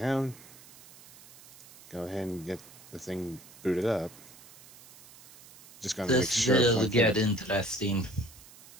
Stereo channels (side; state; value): right; noise; hiss, 21 dB below the sound